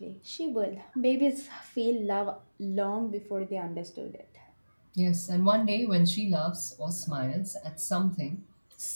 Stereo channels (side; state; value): both; inverted; correlation -1.00